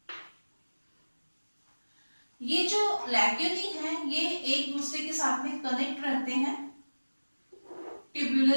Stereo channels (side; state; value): both; inverted; correlation -1.00